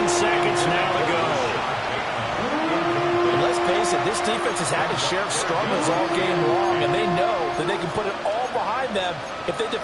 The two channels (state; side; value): identical; both; correlation 1.00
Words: seconds now to go. And let's face it, this defense has had its share of struggles all game long, and they know that they can put it all behind them if they